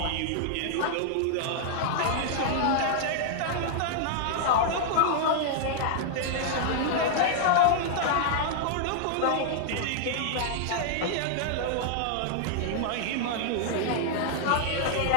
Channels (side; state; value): both; different; correlation -0.01